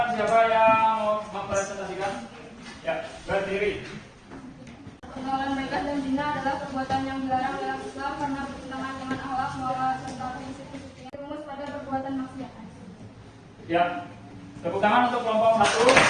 siapa yang mau mempresentasikan? Ya, berdiri. Pergaulan bebas dan zina adalah perbuatan yang dilarang dalam Islam karena bertentangan dengan akhlak, moral, serta prinsip-prinsip yang rumus pada perbuatan maksiat. Ya, tepuk tangan untuk kelompok 1.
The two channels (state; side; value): identical; both; correlation 1.00